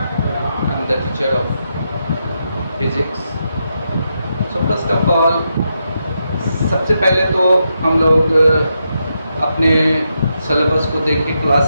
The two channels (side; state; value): both; inverted; correlation -0.84